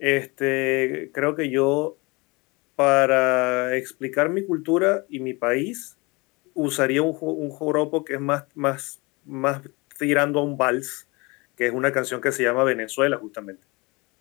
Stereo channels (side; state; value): right; quieter; 26.2 dB